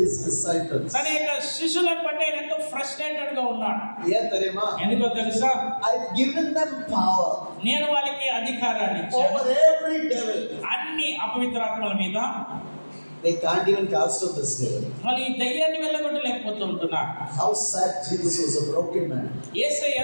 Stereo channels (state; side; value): inverted; both; correlation -1.00